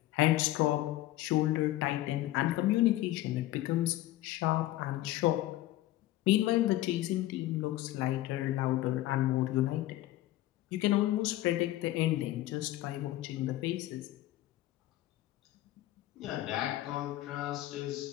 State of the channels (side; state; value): right; quieter; 15.5 dB